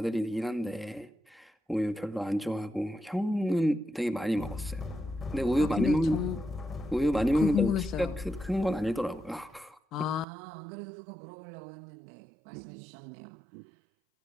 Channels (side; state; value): left; drops out; at 10.2 s